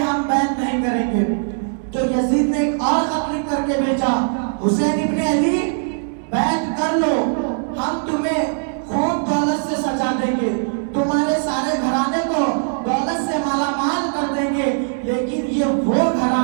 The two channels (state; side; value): silent; left; 66 dB below the other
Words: ہم بیعت نہیں کریں گے۔ تو یزید نے ایک اور خط لکھ کر کے بھیجا، حسین ابن علی بیعت کر لو، ہم تمہیں خوب دولت سے سجا دیں گے، تمہارے سارے گھرانے کو دولت سے مالا مال کر دیں گے، لیکن یہ وہ